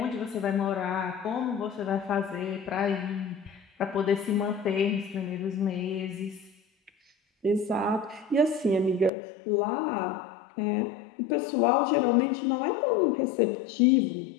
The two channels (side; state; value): right; drops out; at 9.1 s